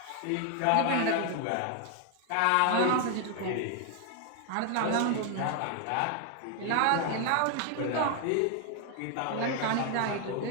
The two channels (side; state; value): both; different; correlation 0.00